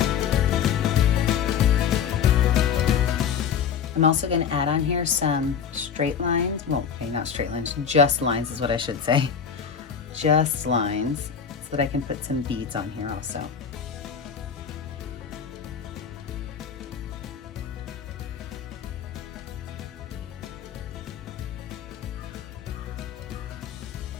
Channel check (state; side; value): quieter; right; 7.3 dB